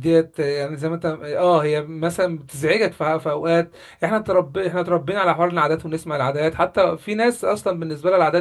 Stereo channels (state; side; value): identical; both; correlation 1.00